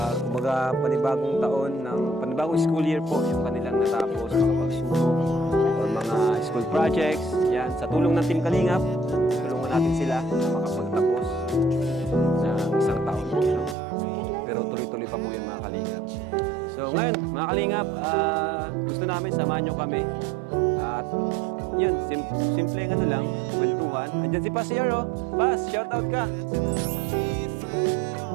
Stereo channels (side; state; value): left; drops out; at 13.8 s